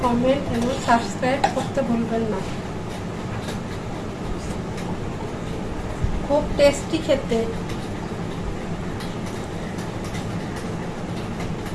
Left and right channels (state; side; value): identical; both; correlation 1.00